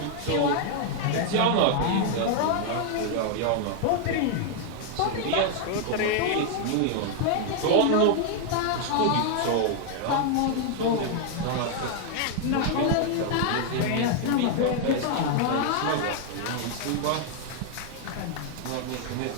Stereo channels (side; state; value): both; different; correlation 0.00